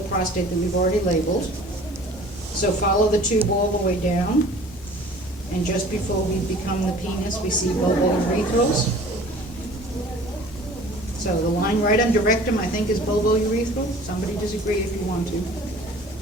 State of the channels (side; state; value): both; normal; correlation 0.48